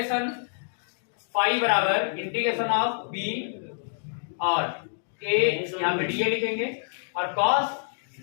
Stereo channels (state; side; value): silent; right; digital silence